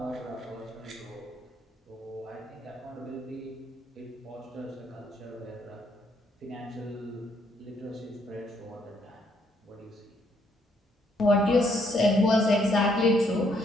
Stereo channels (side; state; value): both; normal; correlation 0.71